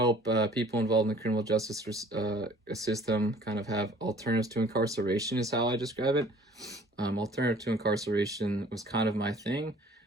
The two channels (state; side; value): normal; both; correlation 0.52